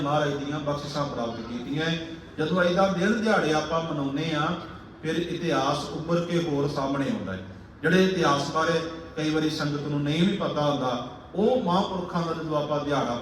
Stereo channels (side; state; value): both; identical; correlation 1.00